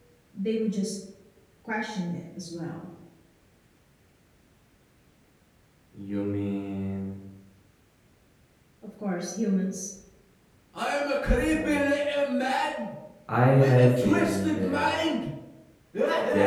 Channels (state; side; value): identical; both; correlation 1.00